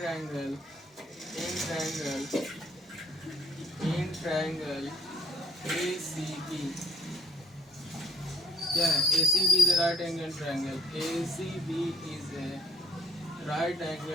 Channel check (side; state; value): both; normal; correlation 0.63